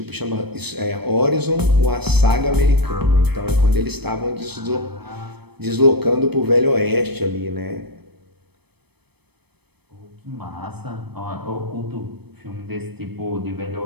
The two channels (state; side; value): late; left; 0.97 ms